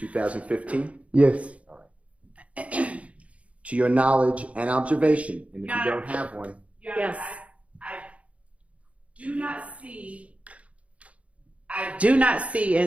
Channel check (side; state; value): left; late; 0.064 ms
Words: Yes. All right. To your knowledge and observation, and if you don't have one. Yes. I do not see. Do not see,